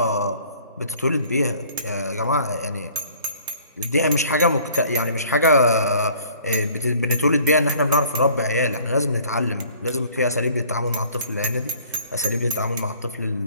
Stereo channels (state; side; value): inverted; both; correlation -0.54